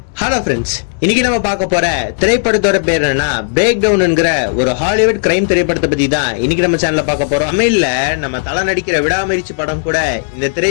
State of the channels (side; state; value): right; silent; digital silence